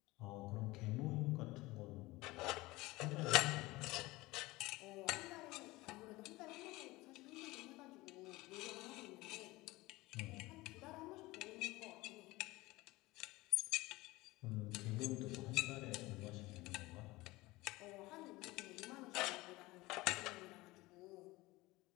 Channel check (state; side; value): quieter; right; 20.5 dB